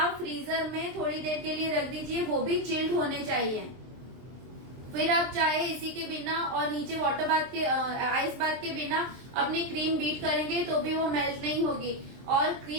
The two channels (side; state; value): left; late; 23 ms